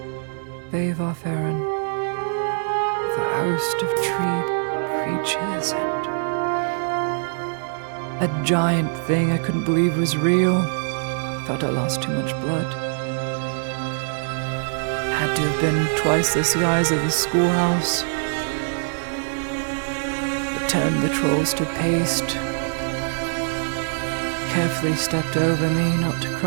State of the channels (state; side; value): silent; left; digital silence